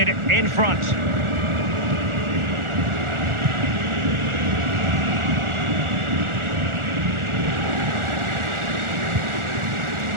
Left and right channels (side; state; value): left; late; 1.4 ms